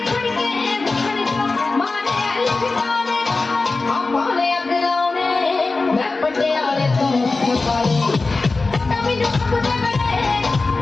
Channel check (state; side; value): quieter; right; 3.7 dB